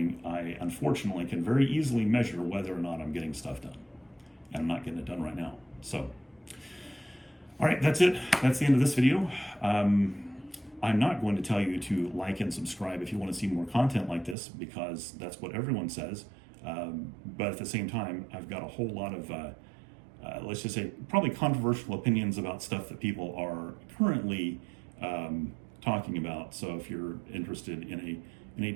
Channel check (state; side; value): drops out; left; at 14.4 s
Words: I unfortunately can very easily measure whether or not I'm getting stuff done. And I'm not getting it done right now. So, all right, that's it. That's the end of this video. I'm not going to tell you to like and subscribe if you want to see more content like this, because that's what everyone says. But at the same time, I've got a whole lot of, let's just say, probably controversial opinions about stuff that people are currently talking about. So if you're interested in a